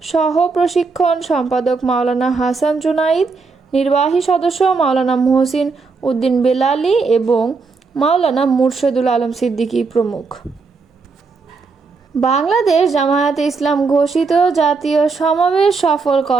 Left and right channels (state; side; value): quieter; left; 4.5 dB